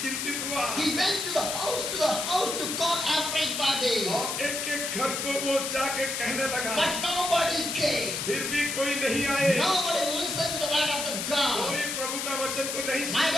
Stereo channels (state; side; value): noise; left; hiss, 2 dB below the sound